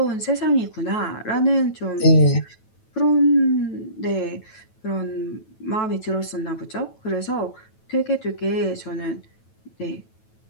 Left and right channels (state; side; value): late; right; 9.2 ms